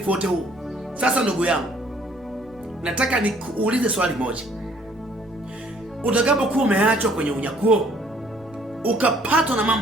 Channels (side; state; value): right; noise; rumble, 26 dB below the sound